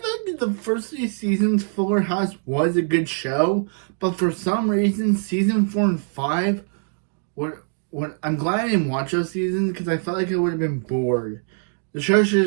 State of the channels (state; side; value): silent; left; 63 dB below the other